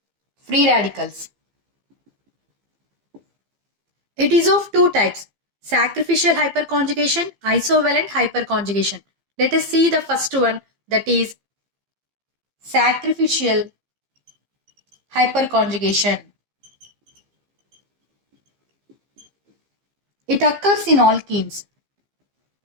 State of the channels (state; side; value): late; left; 15 ms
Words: free radicals. It is of two types, sacrificial hyperconjugation, isovalent hyperconjugation. Let us see the first one, that is sacrificial hyperconjugation. It occurs in alkenes.